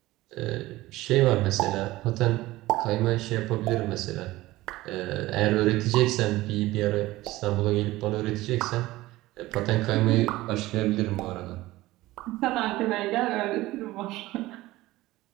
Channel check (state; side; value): quieter; left; 17.9 dB